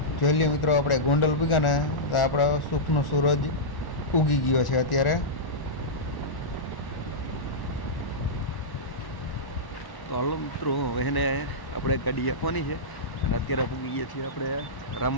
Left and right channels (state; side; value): late; right; 1.1 ms